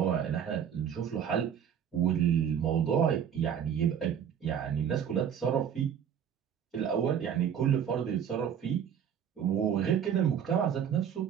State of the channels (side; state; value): left; quieter; 8.5 dB